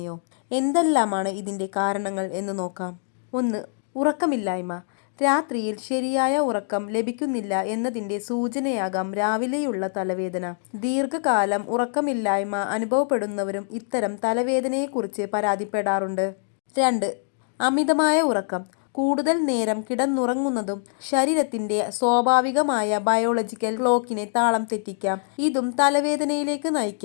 എന്തെല്ലാമാണ് ഇതിൻ്റെ കാരണങ്ങൾ എന്ന് നോക്കാം. 1. ഉറക്കമില്ലായ്മ. രാത്രിയിൽ ശരിയായ ഉറക്കം ലഭിക്കുന്നില്ല എന്നതിൻ്റെ സൂചനയാകാം രാവിലെയുള്ള തലവേദന. ദീർഘകാലം ഉറക്കമില്ലായ്മ അനുഭവപ്പെടുന്നവരും ഇത്തരം തലവേദനയെക്കുറിച്ച് പരാതിപ്പെടാറുണ്ട്. 2. അമിതമായ ഉറക്കം. കൂടുതൽ നേരം കിടന്നുറങ്ങുന്നതും ശരീരത്തിൻ്റെ സ്വാഭാവികമായ ബയോളജിക്കൽ ക്ലോക്കിനെ താളം തെറ്റിക്കാം. ഇതും തലവേദനയിലേക്ക്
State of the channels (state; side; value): silent; right; digital silence